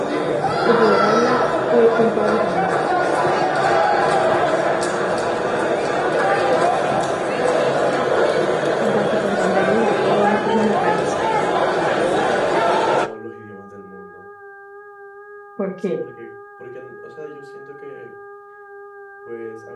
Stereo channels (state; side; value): identical; both; correlation 1.00